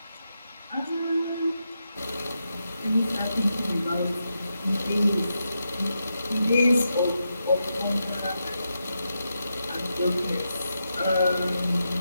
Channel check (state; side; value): inverted; both; correlation -0.86